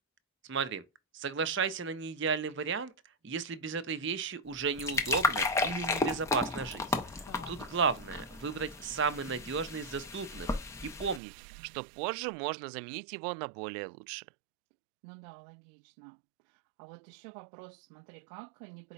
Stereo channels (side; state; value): left; drops out; at 11.2 s